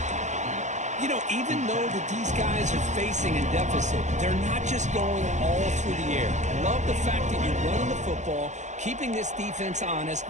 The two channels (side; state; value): left; late; 0.34 ms